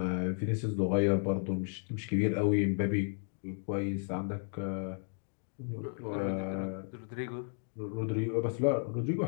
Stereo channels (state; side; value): silent; right; 55 dB below the other